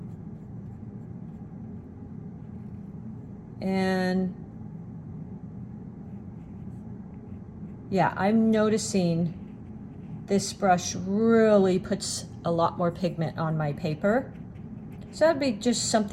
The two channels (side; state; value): both; identical; correlation 1.00